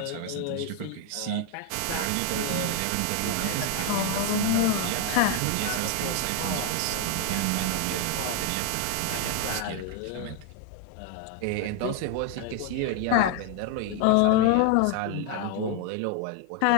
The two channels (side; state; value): both; different; correlation 0.00